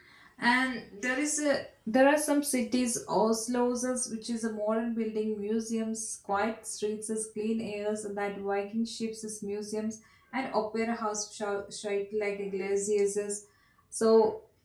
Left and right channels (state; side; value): identical; both; correlation 1.00